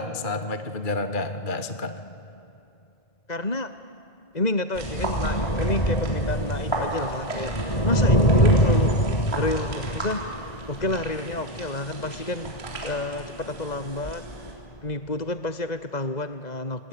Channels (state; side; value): late; right; 2.0 ms